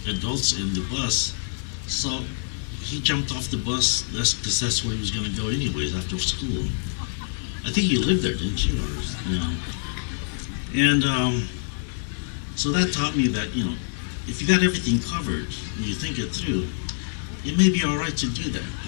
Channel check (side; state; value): right; silent; 61 dB below the other